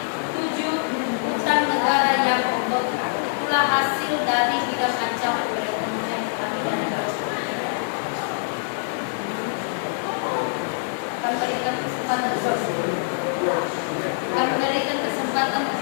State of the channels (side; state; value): right; silent; digital silence